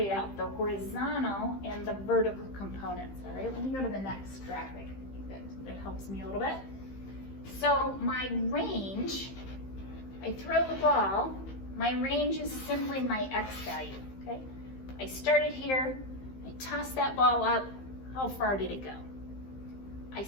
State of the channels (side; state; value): right; late; 15 ms